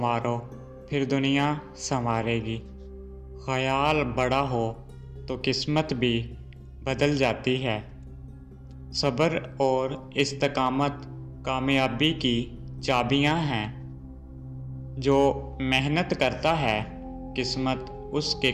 پھر دنیا سنوارے گی۔ خیال بڑا ہو تو قسمت بھی بدل جاتی ہے۔ صبر اور استقامت کامیابی کی چابیاں ہیں۔ جو محنت کرتا ہے قسمت اس کے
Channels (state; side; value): identical; both; correlation 1.00